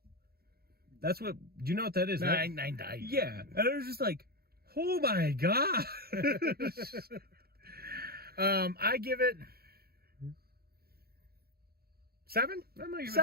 That's what, do you know what that is? I died. Yeah. And I was just like, oh my God. I give it 7?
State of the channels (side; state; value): left; late; 0.45 ms